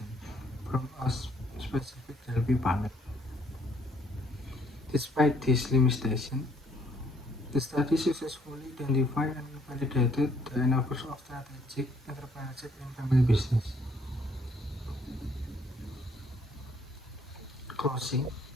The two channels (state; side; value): normal; both; correlation 0.65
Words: from a specific Delphi panel. Despite this limitation, the study successfully identified and validated the enablers of strategic entrepreneurship in family business. Closing,